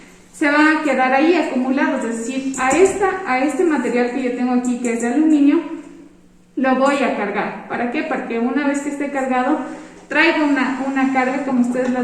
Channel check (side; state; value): both; identical; correlation 1.00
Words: se van a quedar ahí acumulados, es decir, a este material que yo tengo aquí, que es de aluminio, lo voy a cargar. ¿Para qué? Porque una vez que esté cargado, traigo una carga, como ustedes lo